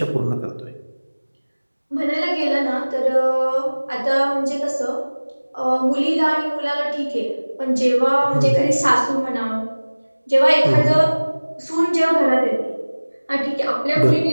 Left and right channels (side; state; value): both; inverted; correlation -1.00